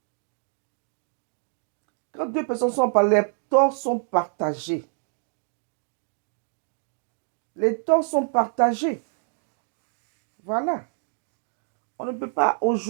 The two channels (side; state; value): left; silent; 56 dB below the other